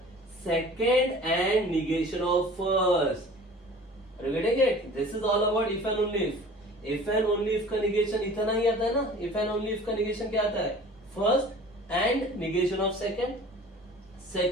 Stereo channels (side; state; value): both; normal; correlation 0.44